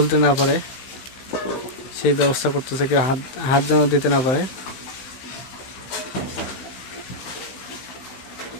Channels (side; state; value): right; late; 15 ms